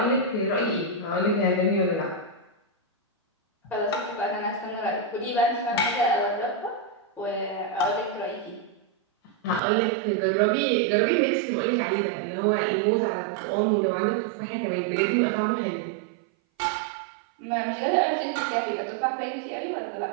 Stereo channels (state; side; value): drops out; left; at 9.6 s